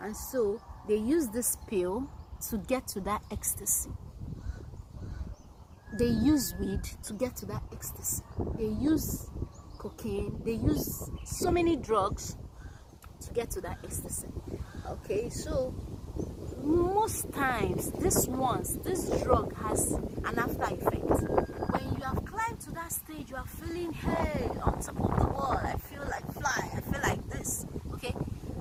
so they use this pill to get to that ecstasy. They use weed to get to that ecstasy. They use cocaine. They use so many drugs to get to that ecstasy. Okay, so most times this drug has an after effect. When you have climbed to that stage, you are feeling, hey, on top of the world, I feel like fly, I feel like this. Okay,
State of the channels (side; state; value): both; identical; correlation 1.00